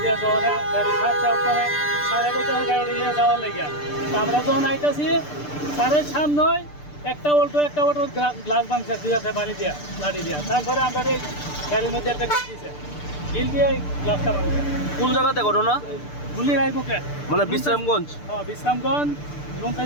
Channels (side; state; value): right; late; 6.8 ms